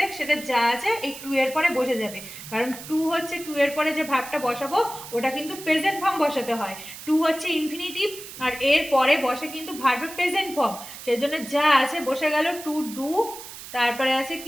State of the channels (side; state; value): right; noise; hiss, 13 dB below the sound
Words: সেটা যা আছে এই টু এর পরে বসে যাবে, কারণ টু হচ্ছে টু এর পরে যে ভার্বটা বসাবো ওটা কিন্তু প্রেজেন্ট ফর্ম বসাতে হয়। টু হচ্ছে ইনফিনিটিভ, আর এর পরে বসে কিন্তু ভার্বের প্রেজেন্ট ফর্ম, সেই জন্য যা আছে বসে গেল টু ডু, তারপরে আছে